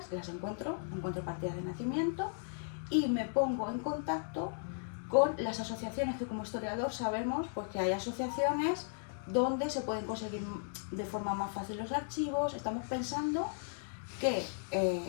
las encuentro partidas de nacimiento y me pongo en contacto con las asociaciones, que como historiador sabemos pues que hay asociaciones donde se pueden conseguir de forma más fácil los archivos. Estamos pensando que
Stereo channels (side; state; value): right; silent; digital silence